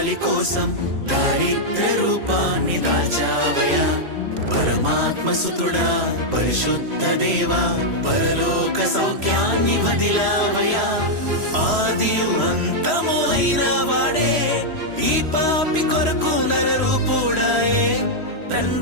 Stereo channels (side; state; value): left; late; 3.0 ms